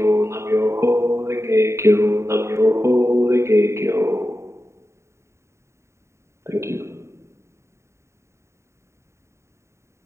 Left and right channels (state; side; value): late; left; 0.14 ms